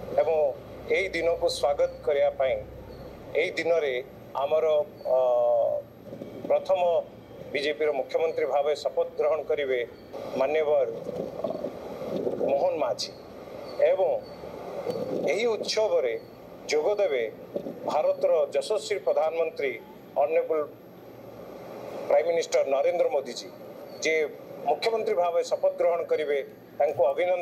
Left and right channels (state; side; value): identical; both; correlation 1.00